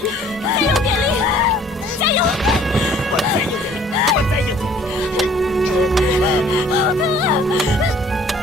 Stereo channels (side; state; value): both; normal; correlation 0.55